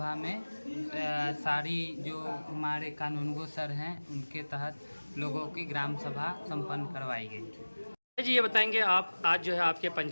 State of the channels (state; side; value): inverted; both; correlation -1.00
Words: में सारी जो हमारे कानूनगो सर हैं उनके तहत लोगों की ग्राम सभा संपन्न करवाई गई। जी ये बताएंगे आप आज जो है आपके